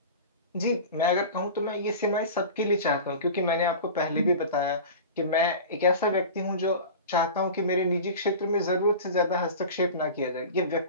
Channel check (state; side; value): inverted; both; correlation -0.34